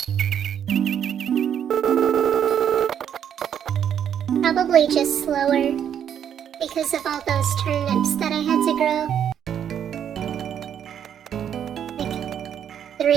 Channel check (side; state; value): left; quieter; 9.0 dB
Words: Probably just slower because of all those turnips that I had to grow. Like